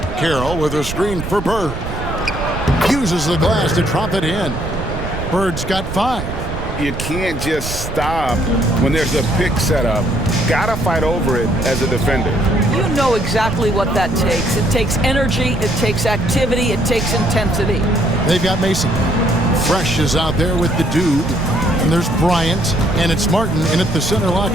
Carroll with a screen for Bird. Uses the glass to drop it in. Bird's got 5. You can't just stop when there's a pick set up. Gotta fight over it as a defender. You know exactly what that takes. It takes energy, it takes activity, it takes intensity. They've got Mason. Fresh is out there with the dude. And there's Bryant, and it's Martin in at the center,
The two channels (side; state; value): right; noise; rumble, 7 dB below the sound